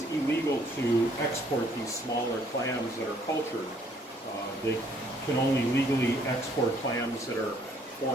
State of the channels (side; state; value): both; normal; correlation 0.64